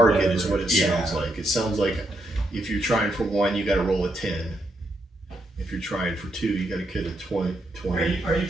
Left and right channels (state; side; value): normal; both; correlation 0.79